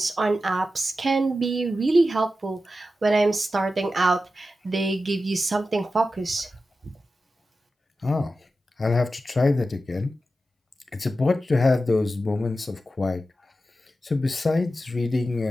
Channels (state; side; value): normal; both; correlation 0.92